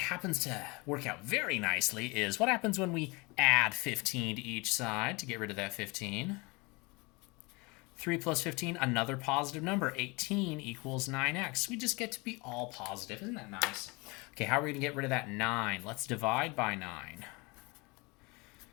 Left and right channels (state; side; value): quieter; right; 26.8 dB